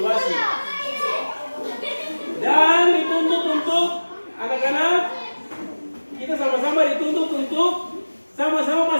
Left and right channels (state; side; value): inverted; both; correlation -1.00